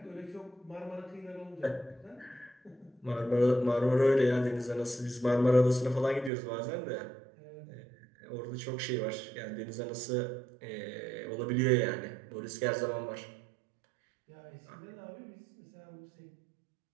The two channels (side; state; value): left; drops out; at 6.3 s